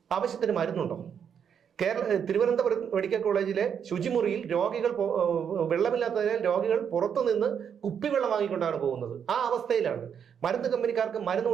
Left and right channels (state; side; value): quieter; left; 7.8 dB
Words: ആവശ്യത്തിന് മരുന്നുണ്ടോ? തിരുവനന്തപുരം മെഡിക്കൽ കോളേജിലെ ശുചിമുറിയിൽ രോഗികൾ വെള്ളമില്ലാത്തതിനാൽ രോഗികൾ പുറത്തുനിന്ന് കുപ്പിവെള്ളം വാങ്ങിക്കൊണ്ടാണ് പോകുന്നത്. ആ അവസ്ഥയിലാണ്. മരുന്ന് കമ്പനിക്കാർക്ക് മരുന്ന്